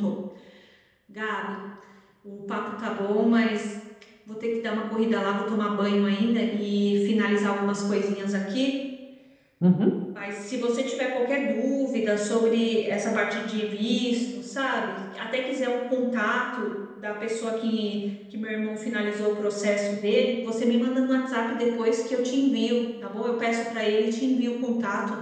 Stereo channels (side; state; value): both; identical; correlation 1.00